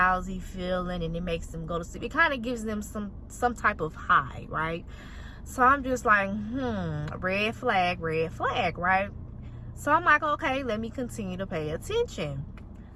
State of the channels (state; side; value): identical; both; correlation 1.00